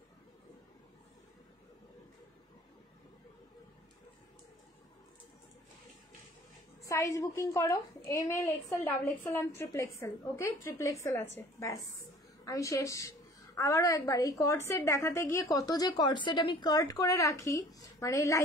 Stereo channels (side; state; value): both; normal; correlation 0.49